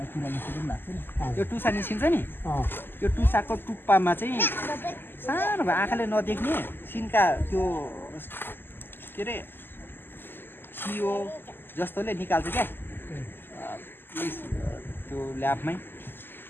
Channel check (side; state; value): right; late; 0.097 ms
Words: कुरा निस्किनु पनि लाग्छ नि। त्यो टुसा निस्किन्छ नि, त्यो टुसाको टुप्पामा चाहिँ सानो भए आँखाले नदेख्ने सिन्का त्यो के अरे सियो जस्तोले निकाल्छ क्या। त्यो ल्याबमै